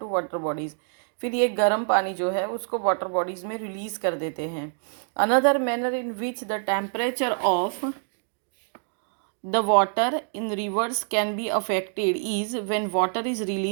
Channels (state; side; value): silent; left; 61 dB below the other